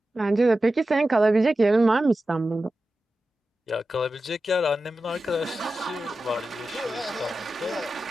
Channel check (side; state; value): both; normal; correlation 0.93